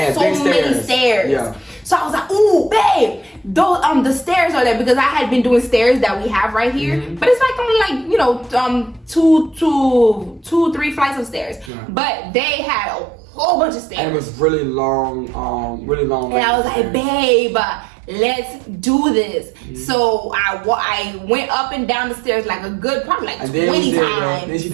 so many stairs. Yeah. So I was like, "Ooh, babe, those the stairs are there," because I had been doing stairs that we have right here, but it's like only like two, 3 flights of stairs. Yeah. But they had a whole bunch of stairs. And it was really long, And I was like, "Babe, let's do this." So I went up and down the stairs like a good, probably like 20 times. Then she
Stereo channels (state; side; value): drops out; left; at 11.7 s